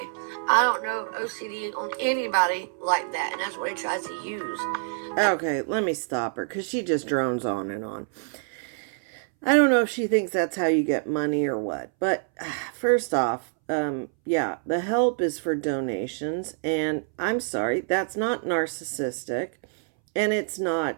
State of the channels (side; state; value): left; silent; 61 dB below the other